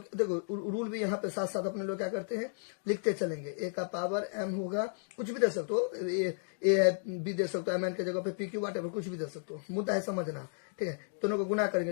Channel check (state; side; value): silent; right; digital silence